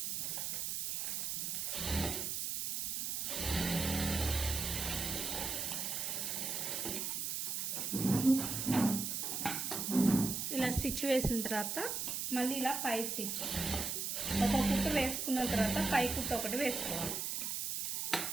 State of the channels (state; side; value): noise; right; hiss, 1 dB below the sound